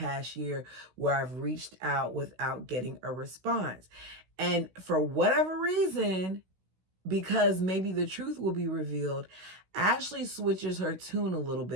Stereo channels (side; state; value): left; late; 16 ms